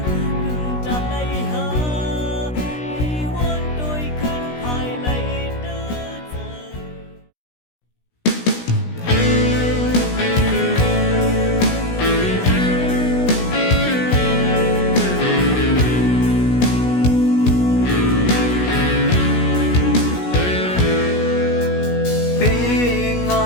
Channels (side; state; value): right; late; 16 ms